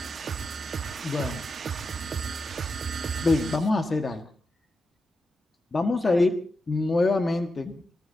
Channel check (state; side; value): normal; both; correlation 0.88